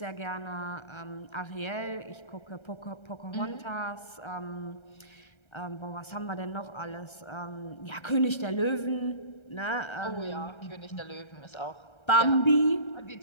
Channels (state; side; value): late; right; 1.3 ms